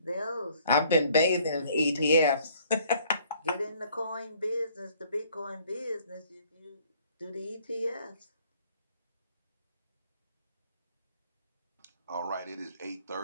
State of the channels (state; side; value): inverted; both; correlation -0.59